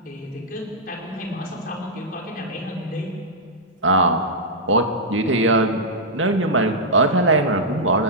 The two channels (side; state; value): both; normal; correlation -0.08